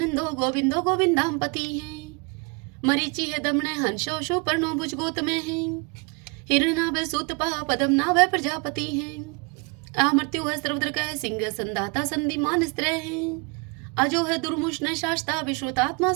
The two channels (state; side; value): quieter; left; 31.4 dB